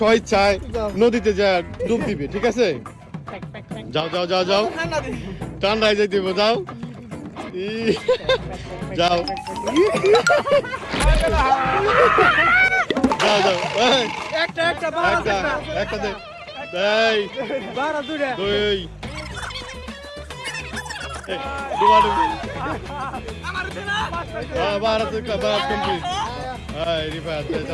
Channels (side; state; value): both; identical; correlation 1.00